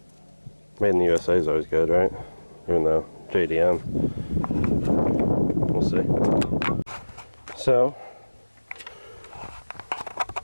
Made in the USA is always good, right? Even though JDM. We'll see. So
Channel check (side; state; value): both; inverted; correlation -1.00